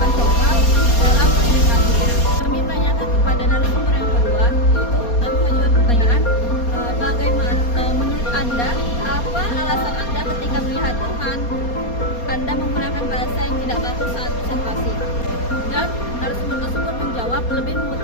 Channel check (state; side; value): late; right; 4.2 ms